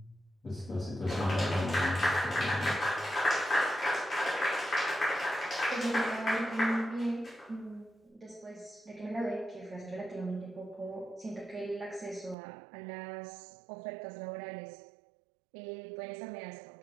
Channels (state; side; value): drops out; left; at 12.4 s